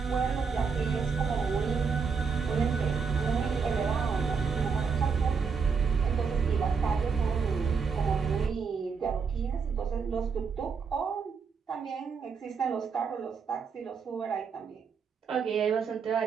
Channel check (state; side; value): quieter; left; 5.7 dB